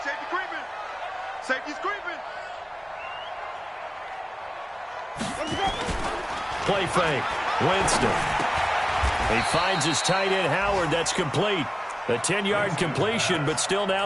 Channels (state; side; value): identical; both; correlation 1.00